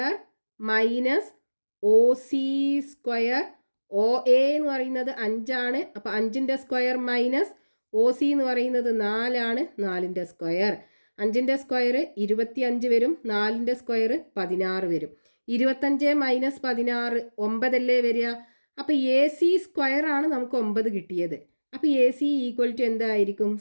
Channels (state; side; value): inverted; both; correlation -1.00